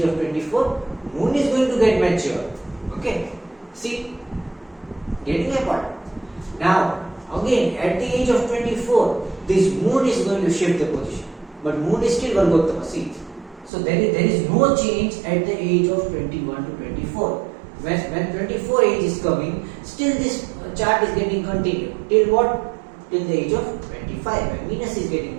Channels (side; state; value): left; drops out; at 13.7 s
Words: of 24, Moon is going to get mature. Okay, see, getting my point? Now again at the age of 24, this Moon is going to shift the position, but Moon is still Vargottama. See, so there is no change at the age of 21 to 24. When 24 age is coming, still this chart is getting continued. Till what? Till the age of 25, when Venus is getting